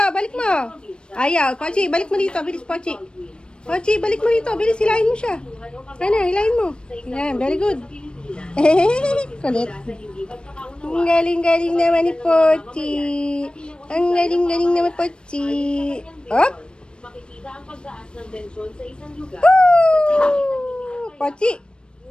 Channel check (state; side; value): late; right; 0.054 ms